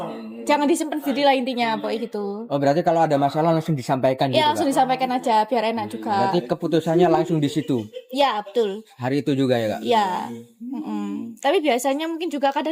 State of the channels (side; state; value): both; identical; correlation 1.00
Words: jangan disimpan sendiri lah intinya, pokoknya gitu. Oh, berarti kalau ada masalah langsung disampaikan gitu Ya langsung Kak? disampaikan aja biar enak juga. Berarti keputusannya langsung di situ. Ya betul. Hari itu juga ya Kak? Iya. Tapi biasanya mungkin juga